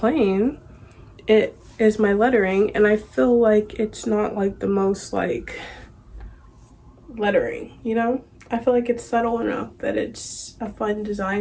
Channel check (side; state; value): both; identical; correlation 1.00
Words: it is my lettering, and I feel like it's not like the most like lettering, you know? I feel like it's subtle enough that it's a fun